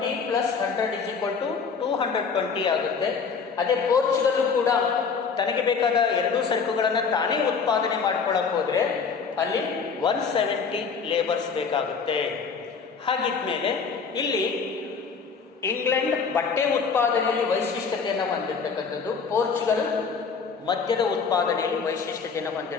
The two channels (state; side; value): quieter; right; 5.7 dB